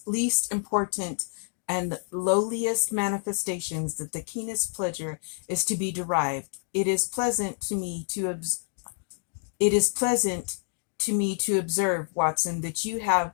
least important and lowliest manifestations that the keenest pleasure is to be derived. It is pleasant to me to observe, Watson, that you have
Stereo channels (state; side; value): silent; right; digital silence